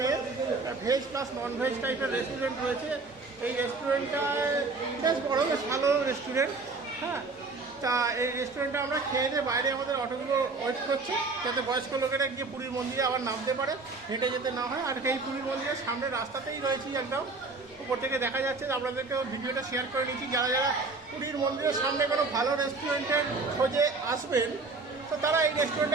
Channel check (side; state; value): left; quieter; 3.8 dB